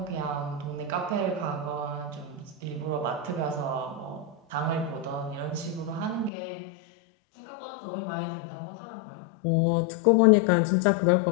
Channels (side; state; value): right; drops out; at 6.3 s